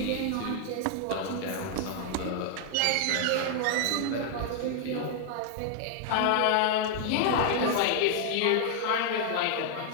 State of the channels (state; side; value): different; both; correlation 0.00